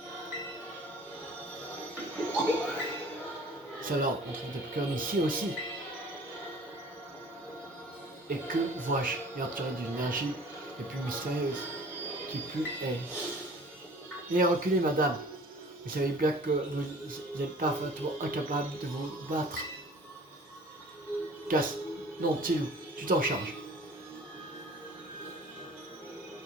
Ça alors, on trouve des Pokémon ici aussi. Et que vois-je ayant tiré d'une énergie les plus mystérieuse qui plus est? Et reculez, madame. Vous savez bien que vous êtes parfaitement incapable de vous battre. Casse. Non, Tilou, tu t'en charges.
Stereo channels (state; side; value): normal; both; correlation 0.48